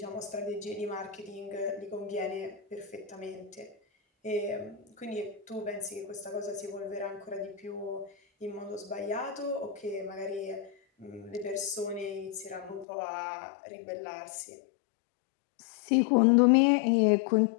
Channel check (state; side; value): drops out; right; at 12.9 s